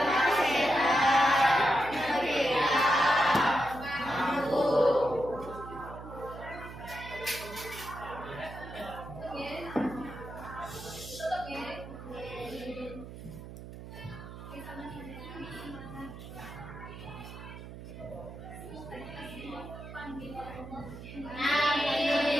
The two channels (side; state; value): right; noise; hum, 12 dB below the sound